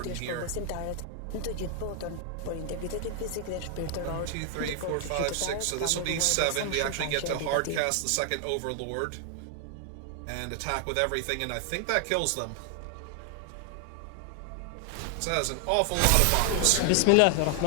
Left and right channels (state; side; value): different; both; correlation 0.00